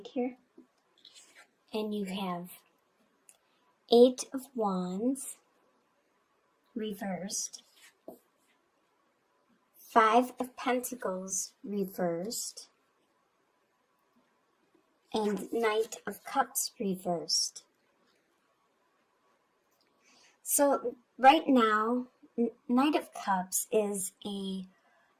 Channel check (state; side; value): identical; both; correlation 1.00